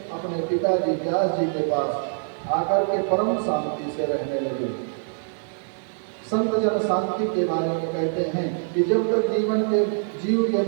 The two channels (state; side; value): silent; left; digital silence